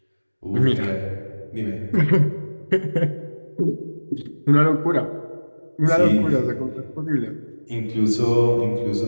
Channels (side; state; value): both; inverted; correlation -1.00